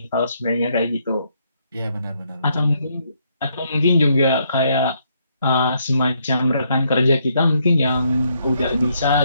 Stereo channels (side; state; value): both; inverted; correlation -0.73